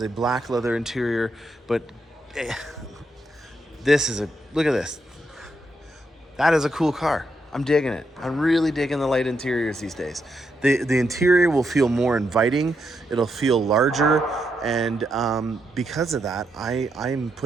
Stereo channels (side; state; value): both; normal; correlation 0.81